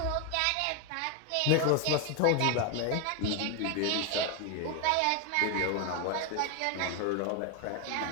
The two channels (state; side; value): different; both; correlation 0.01